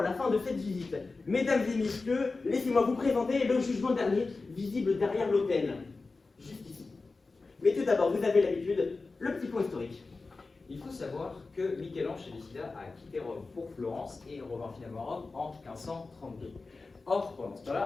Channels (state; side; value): quieter; right; 3.8 dB